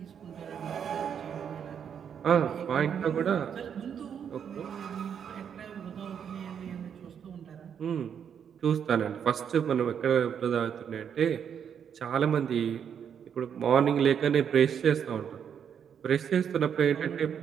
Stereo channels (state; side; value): quieter; left; 8.0 dB